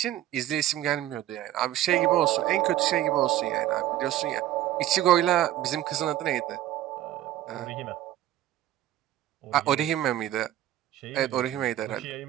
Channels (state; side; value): quieter; left; 13.4 dB